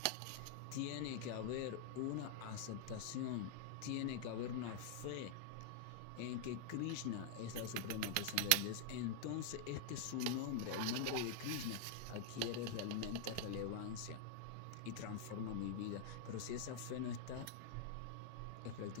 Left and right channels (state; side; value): different; both; correlation -0.01